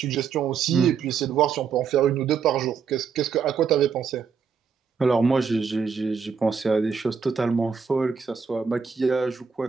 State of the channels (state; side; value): quieter; left; 6.1 dB